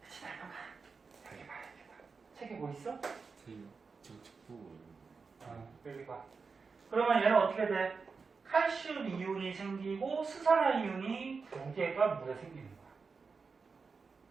그치, 날려가. 여기 봐, 여기 봐. 책에 뭐 있어? 저희요. 책 보고 여기 봐. 그러면 얘는 어떻게 돼? 칼슘 이온이 생기고 수산화 이온이 2개가 물에 생기는 거야.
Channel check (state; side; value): quieter; left; 4.9 dB